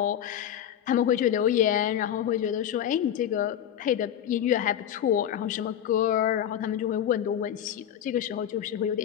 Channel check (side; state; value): right; quieter; 10.1 dB